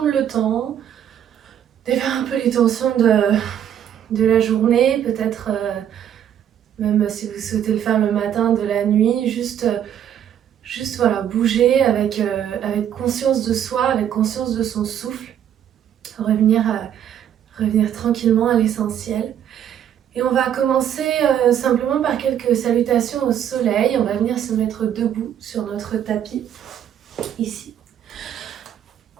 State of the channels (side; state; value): left; quieter; 9.9 dB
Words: le temps, défaire un peu les tensions de la journée, peut-être même si vous souhaitez le faire le matin, de la nuit, juste voilà, bouger avec conscience de soi, avec conscience de son souffle, revenir tranquillement à l'essentiel. Et on va commencer simplement par quelques salutations au soleil. On va venir se mettre debout sur notre tapis, ici.